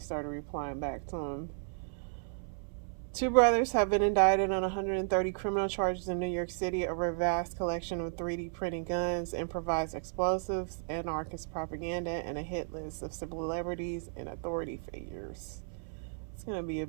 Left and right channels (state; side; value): silent; left; 55 dB below the other